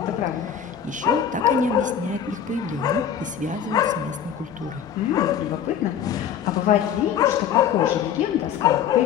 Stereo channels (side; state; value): right; quieter; 8.6 dB